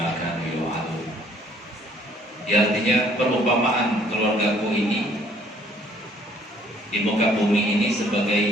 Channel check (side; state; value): both; normal; correlation 0.60